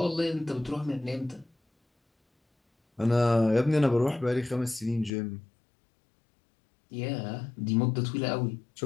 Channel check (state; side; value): drops out; right; at 5.1 s